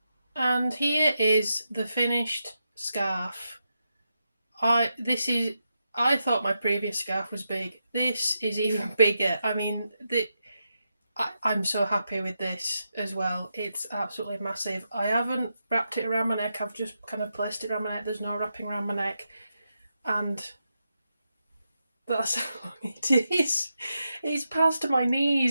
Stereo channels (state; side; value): inverted; both; correlation -0.86